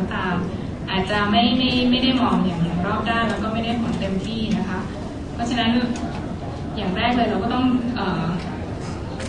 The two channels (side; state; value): both; identical; correlation 1.00